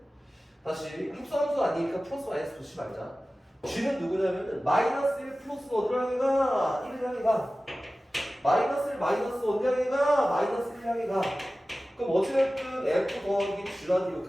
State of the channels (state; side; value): normal; both; correlation 0.96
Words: 다시 합성함수 아니니까 플러스 마이너스 붙이지 말자 G는 누구냐면은 마이너스 1 플러스 어디로 향해 가? 1을 향해 가 마이너스 1 마이너스 어디 향해 가? 마이너스 1 향해 가 그럼 어찌됐든 F 더하기 G라는 이